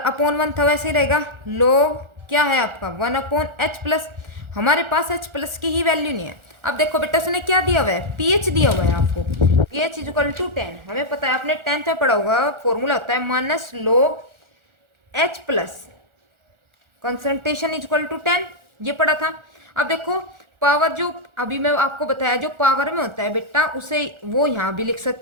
1 था वैसे ही रहेगा, लोग क्या है आपका 1 अपॉन एच प्लस, हमारे पास एच प्लस की ही वैल्यू नहीं है। अब देखो बेटा उसने क्या दिया हुआ है, पीएच दिया हुआ है आपको, पीएच इक्वल टू 10, हमें पता है आपने 10th में पढ़ा होगा, फॉर्मूला होता है minus log H plus concentration equal to 10, ये पढ़ा था। अब देखो पावर जो अभी मैं आपको बताया जो पावर में होता है बेटा, उसे वो यहाँ भी लिख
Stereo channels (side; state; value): left; late; 1.4 ms